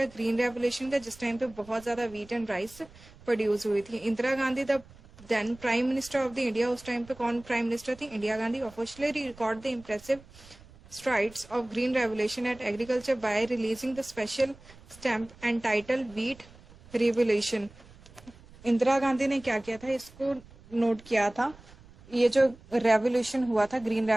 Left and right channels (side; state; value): right; noise; rumble, 22 dB below the sound